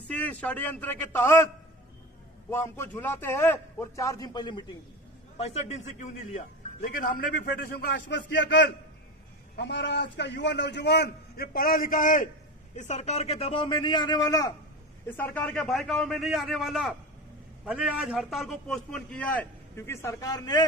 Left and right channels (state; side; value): normal; both; correlation 0.26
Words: षड्यंत्र के तहत वो हमको झुलाते हैं और 4 दिन पहले मीटिंग दी। 65 दिन से क्यों नहीं लिया? लेकिन हमने भी फेडरेशन को आश्वस्त किया कल, हमारा आज का युवा नौजवान ये पढ़ा लिखा है, इस सरकार के दबाव में नहीं आने वाला, इस सरकार के बहकावे में नहीं आने वाला। भले आज हड़ताल को पोस्टपोन किया है क्योंकि सरकार ने